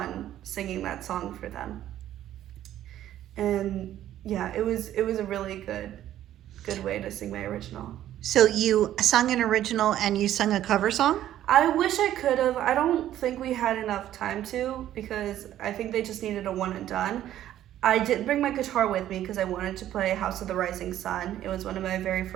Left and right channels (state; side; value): quieter; left; 12.3 dB